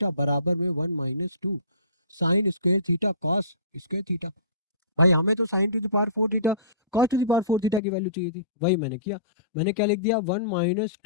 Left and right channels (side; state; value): right; drops out; at 7.8 s